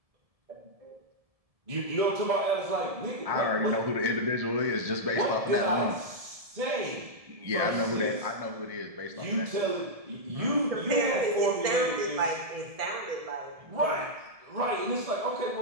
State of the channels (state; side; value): late; left; 1.7 ms